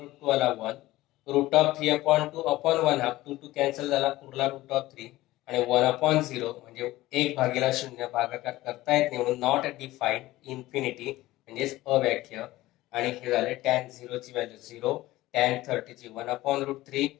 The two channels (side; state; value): right; quieter; 17.3 dB